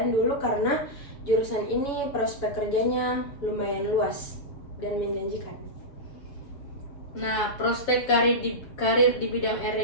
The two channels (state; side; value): late; right; 7.2 ms